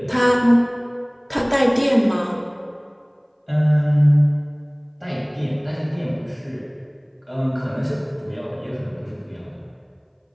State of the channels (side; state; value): both; identical; correlation 1.00